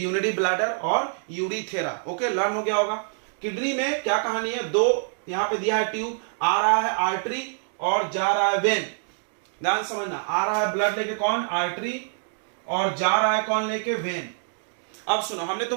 ब्लैडर और यूरिथेरा। ओके, लर्न हो गया होगा। किडनी में क्या कहानी है? 2 यहां पे दिया है ट्यूब, आ रहा है आर्टरी और जा रहा है वेन। ध्यान समझना, आ रहा है ब्लड लेके कौन? आर्टरी, और जा रहा है कौन लेके? वेन। अब सुनो, हमने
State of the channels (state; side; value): silent; left; digital silence